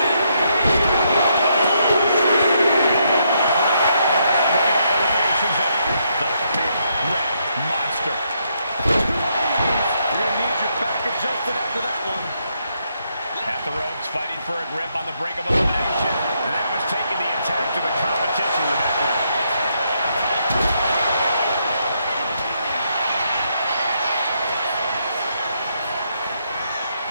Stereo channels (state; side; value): inverted; both; correlation -0.76